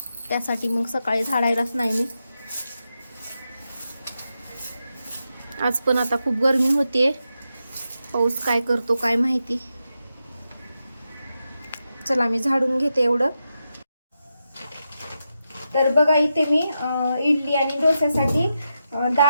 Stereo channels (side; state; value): both; inverted; correlation -0.87